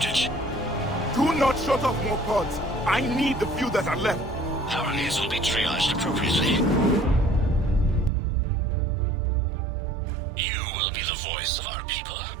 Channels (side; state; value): left; drops out; at 8.1 s